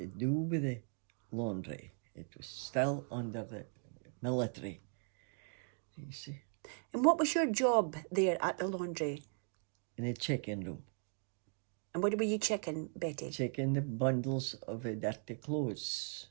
do with the laundry. It was still under the military. You see. And what was your job there at the laundry? In a check-in room. And what were you checking, Betty? Checking the bundles of dirty clothes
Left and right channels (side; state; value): left; silent; 52 dB below the other